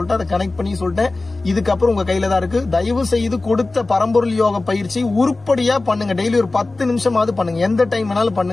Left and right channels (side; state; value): right; quieter; 3.2 dB